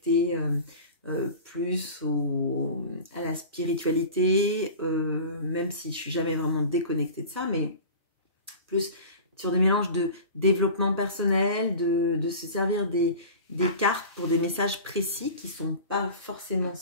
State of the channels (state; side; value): inverted; both; correlation -0.35